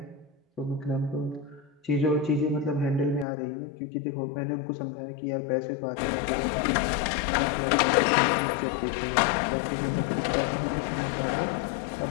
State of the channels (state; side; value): drops out; right; at 3.2 s